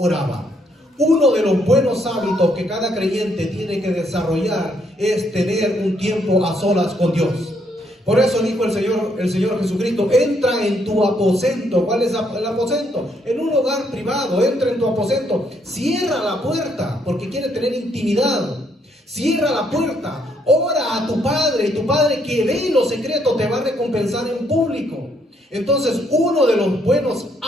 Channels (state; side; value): normal; both; correlation 0.72